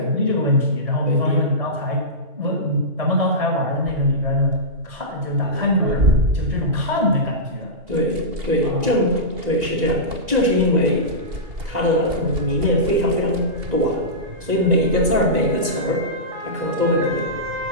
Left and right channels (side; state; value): left; late; 1.9 ms